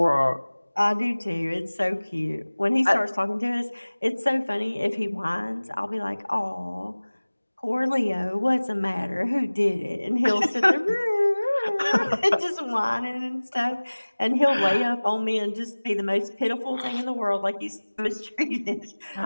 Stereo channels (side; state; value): both; inverted; correlation -1.00